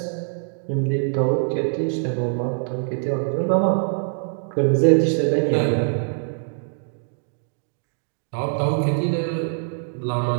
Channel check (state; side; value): silent; left; digital silence